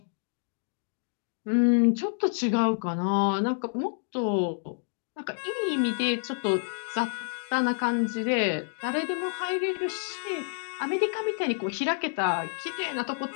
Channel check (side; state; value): right; silent; digital silence